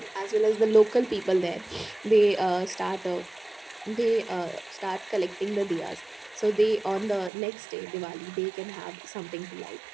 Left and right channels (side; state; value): left; drops out; at 7.3 s